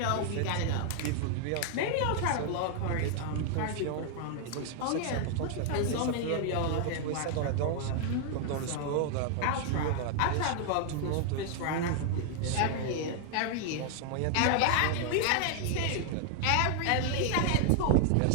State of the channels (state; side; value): different; both; correlation 0.00